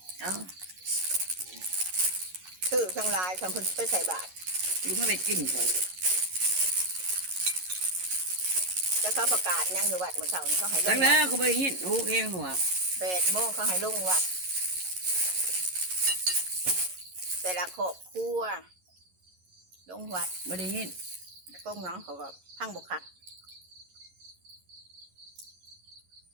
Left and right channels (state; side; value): late; left; 11 ms